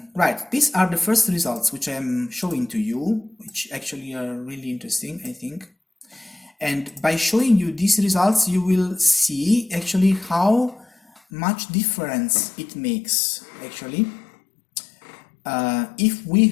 Right, these are the first results which I'm showing to you, which actually are really interesting, I think. And by showing you these results, you will see actually how much difference it makes. Actually, if we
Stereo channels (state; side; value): drops out; right; at 11.2 s